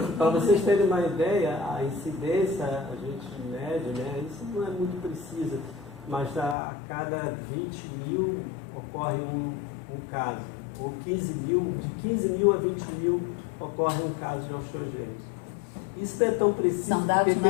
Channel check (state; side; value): drops out; right; at 6.6 s